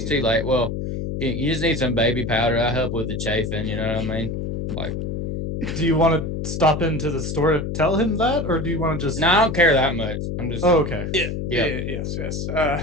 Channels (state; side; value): noise; left; hum, 4 dB below the sound